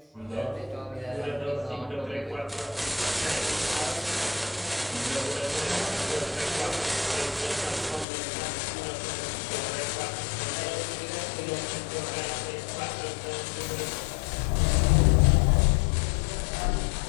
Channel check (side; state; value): right; drops out; at 8.1 s